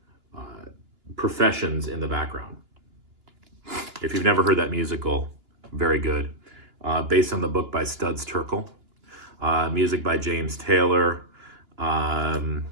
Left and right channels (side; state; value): left; late; 2.9 ms